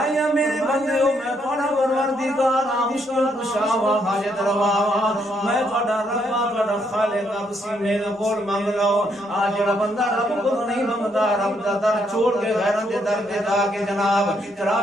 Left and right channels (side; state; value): both; normal; correlation 0.74